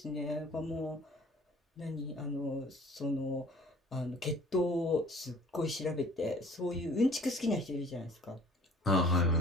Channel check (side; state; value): both; normal; correlation 0.50